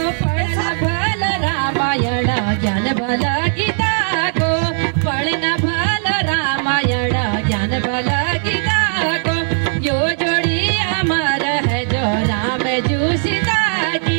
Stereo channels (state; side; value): silent; left; digital silence